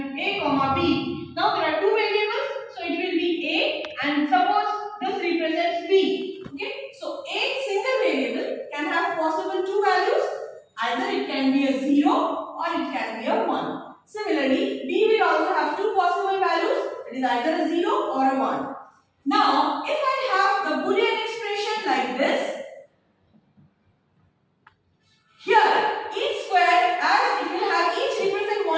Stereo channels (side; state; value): both; identical; correlation 1.00